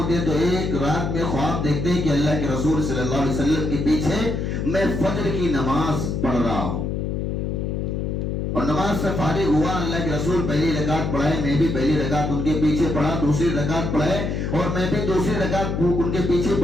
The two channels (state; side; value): noise; left; hum, 2 dB below the sound